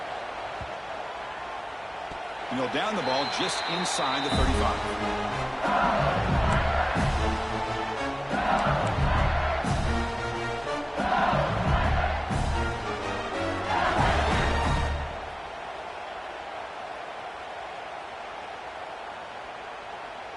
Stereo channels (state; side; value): identical; both; correlation 1.00